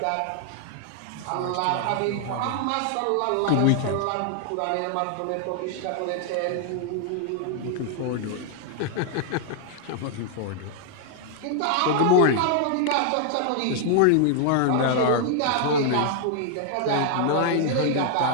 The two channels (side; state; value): both; different; correlation 0.00